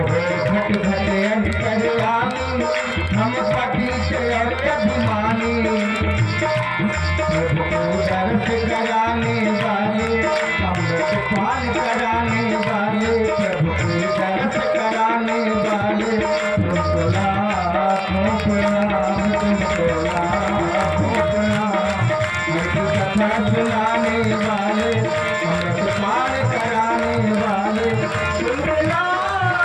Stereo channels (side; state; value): both; identical; correlation 1.00